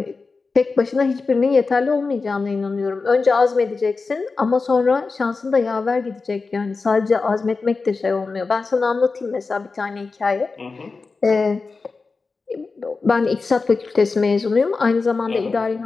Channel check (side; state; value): right; quieter; 4.2 dB